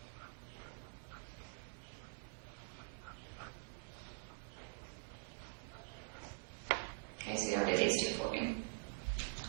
Okay, so y'all do these two for me.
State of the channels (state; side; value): quieter; left; 33.4 dB